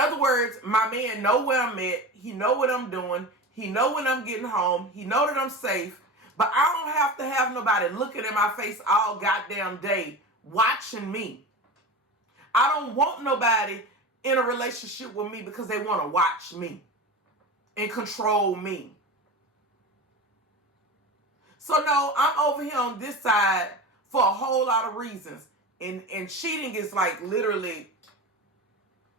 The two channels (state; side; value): normal; both; correlation 0.29